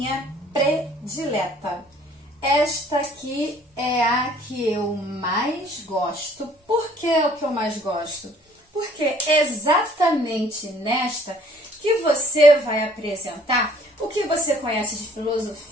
predileta. Esta aqui é a que eu mais gosto. Por que é o que eu mais gosto? Porque é exatamente nesta que você vai apresentar o que você conhece de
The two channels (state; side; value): normal; both; correlation 0.57